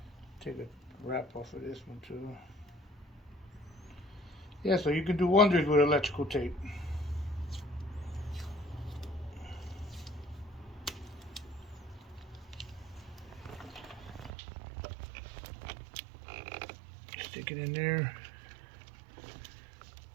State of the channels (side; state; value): left; drops out; at 14.3 s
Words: Take a wrap off of this one too. Yeah, so you can do wonders with electrical tape. Stick it in there.